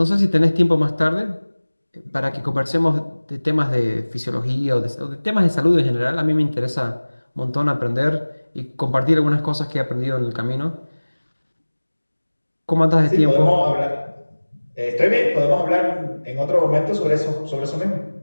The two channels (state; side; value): inverted; both; correlation -1.00